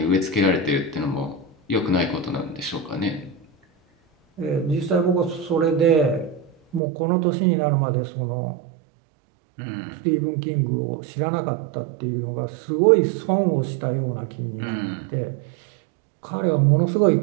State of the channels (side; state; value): left; drops out; at 6.8 s